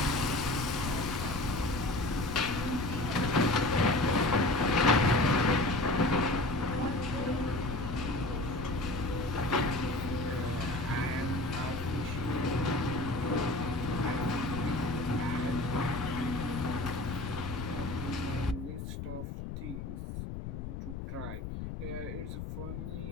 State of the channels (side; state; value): left; noise; rumble, 6 dB below the sound